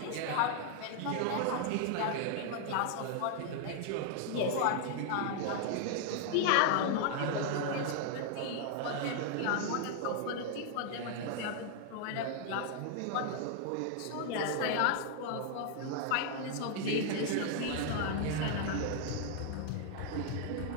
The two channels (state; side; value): different; both; correlation 0.00